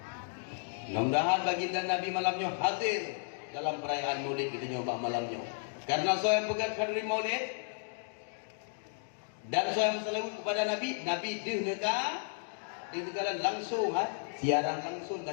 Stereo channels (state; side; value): silent; right; 55 dB below the other